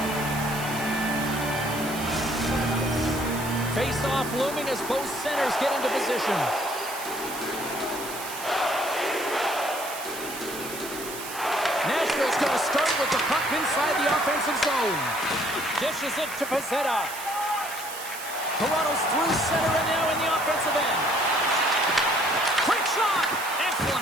Face-off looming as both centers get into position. Nashville's going to start with the puck inside the offensive zone. Dishes it to Pezzetta. Toronto's through center and now in the offensive end. Quick shot! Excellent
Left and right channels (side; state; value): right; noise; hiss, 10 dB below the sound